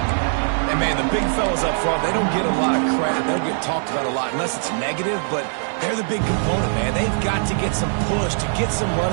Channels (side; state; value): left; silent; 61 dB below the other